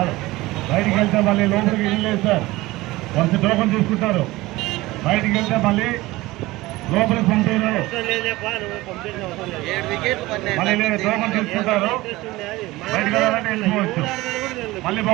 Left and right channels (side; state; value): left; quieter; 19.3 dB